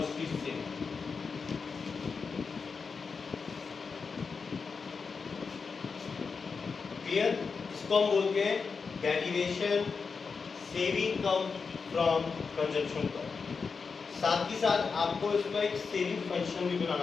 saving। Clear, इसको हम बोलते हैं derivation saving come from consumption curve. साथ ही साथ आपको इसका एक सेविंग फंक्शन भी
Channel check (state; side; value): quieter; right; 5.1 dB